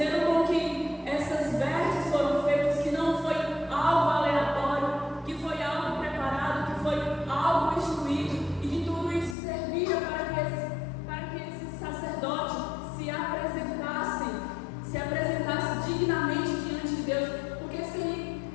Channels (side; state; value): right; drops out; at 9.3 s